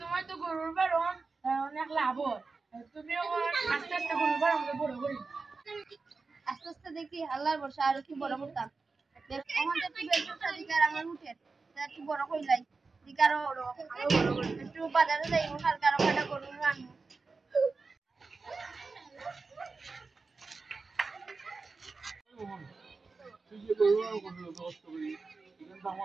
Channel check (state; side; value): quieter; left; 4.2 dB